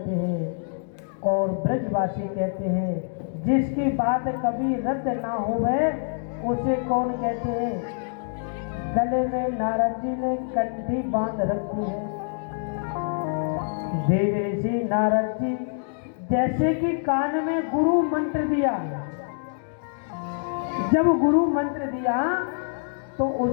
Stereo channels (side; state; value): right; silent; digital silence